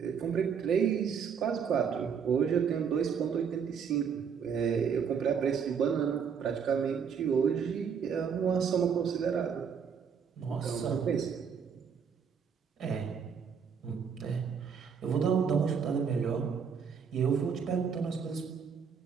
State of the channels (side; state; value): left; quieter; 6.8 dB